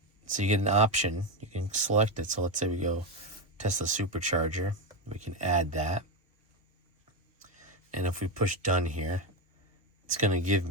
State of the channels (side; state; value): both; normal; correlation 0.13